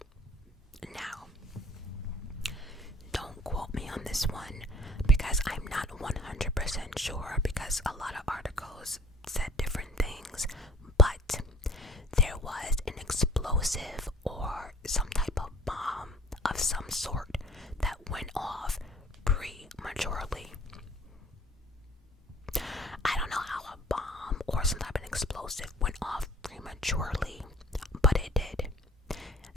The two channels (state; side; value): normal; both; correlation 0.52